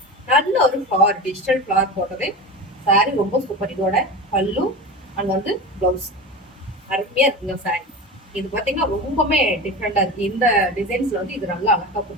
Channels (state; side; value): normal; both; correlation 0.28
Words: நல்ல ஒரு ஃபிளவர், டிஜிட்டல் ஃபிளவர் போட்டது. சாரி ரொம்ப சூப்பர். இதோட பல்லு அண்ட் வந்து ப்ளவுஸ் அருமையா இருக்குங்க சாரி. இது பாத்தீங்கன்னா ரொம்பவே டிஃப்ரெண்டா இருக்கு. இந்த டிசைன்ஸ்ல வந்து இது நல்லா அழகா